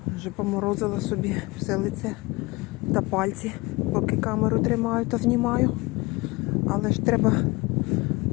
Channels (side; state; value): right; quieter; 23.5 dB